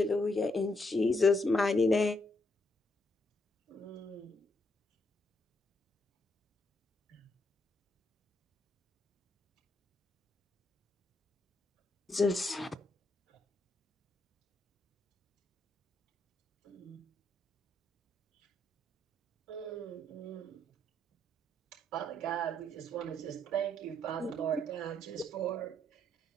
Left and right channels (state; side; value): normal; both; correlation 0.75